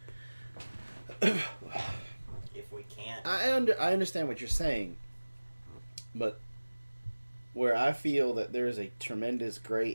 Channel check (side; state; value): both; inverted; correlation -1.00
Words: If we can't... I understand what you're saying, but where I feel that there is a tremendous gray